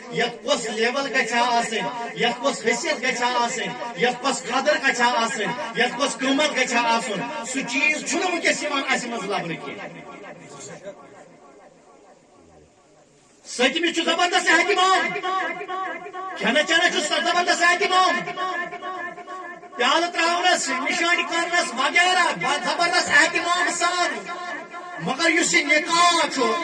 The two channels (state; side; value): identical; both; correlation 1.00